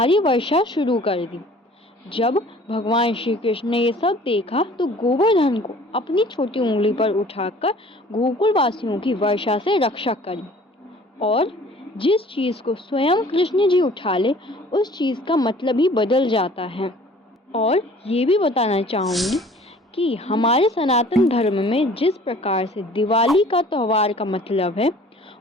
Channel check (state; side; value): normal; both; correlation 0.51